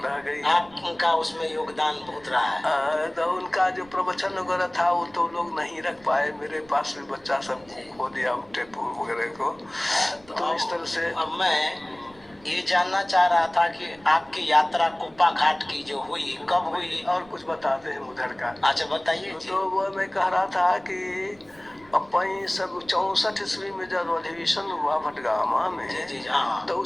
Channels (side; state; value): right; noise; rumble, 28 dB below the sound